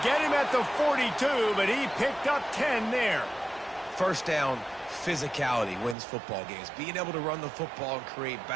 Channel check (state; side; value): drops out; left; at 6.0 s